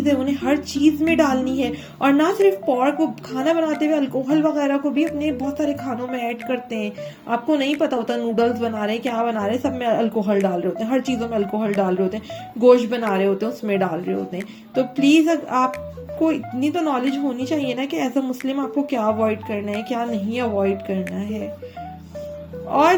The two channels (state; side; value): identical; both; correlation 1.00